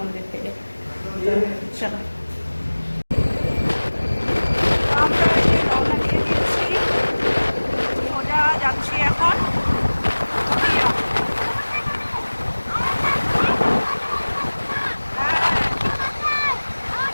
থেকে। তো চলো, আমরা এই যে রওনা দিয়ে দিয়েছি, সোজা যাচ্ছি এখন দুধিয়া।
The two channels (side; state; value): both; inverted; correlation -1.00